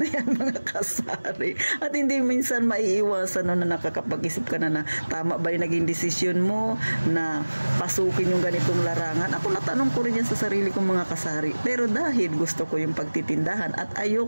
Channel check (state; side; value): inverted; both; correlation -1.00